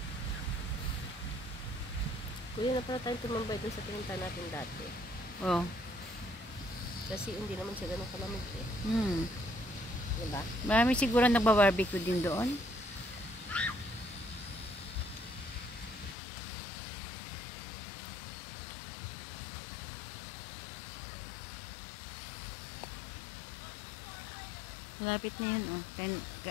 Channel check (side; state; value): right; drops out; at 16.2 s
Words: Kuya, na pala tayong tumambay dun sa pinunta natin dati. Oo. Kasi hindi naman siya ganun kalamig eh. Diba? Marami siguro nagba-barbecue din doon. Malapit na yan, oh.